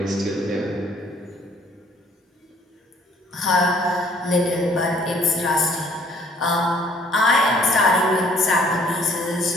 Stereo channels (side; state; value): both; normal; correlation 0.59